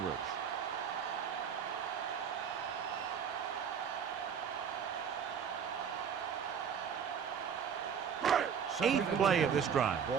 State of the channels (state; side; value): quieter; left; 7.4 dB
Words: 8th play of this drive.